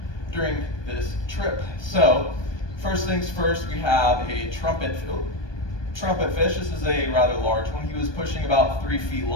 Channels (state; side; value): late; right; 1.2 ms